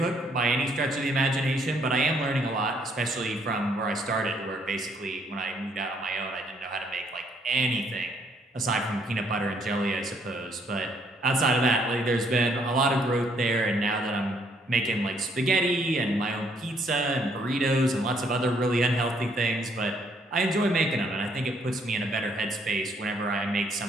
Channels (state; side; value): normal; both; correlation 0.68